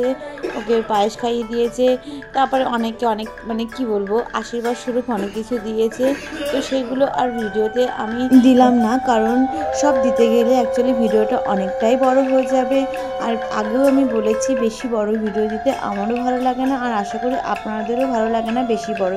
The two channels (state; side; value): identical; both; correlation 1.00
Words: ওকে পায়েস খাইয়ে দিয়েছে। তারপরে অনেকে অনেক মানে কি বলবো আশীর্বাদ স্বরূপ অনেক কিছু দিয়েছে। তো সেগুলো আর ভিডিওতে আমি দিলাম না, কারণ সব দিতে গেলে অ্যাকচুয়ালি ভিডিওটা অনেকটাই বড় হয়ে যাবে। আর আগেও আমি বলেছি বেশি বড় ভিডিও দিতে আমারও ভালো লাগে না, আর আশা করি আপনাদেরও ভালো লাগে না বেশি বড়